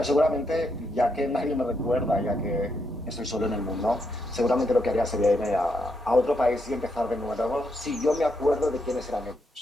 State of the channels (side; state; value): both; normal; correlation 0.79